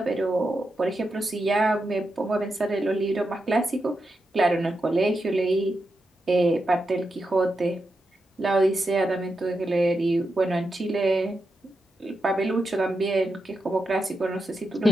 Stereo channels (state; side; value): normal; both; correlation 0.87